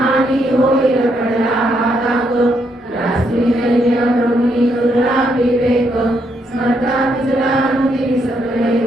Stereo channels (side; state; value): both; normal; correlation 0.76